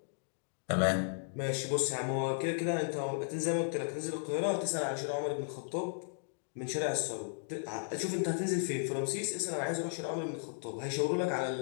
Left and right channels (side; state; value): right; silent; digital silence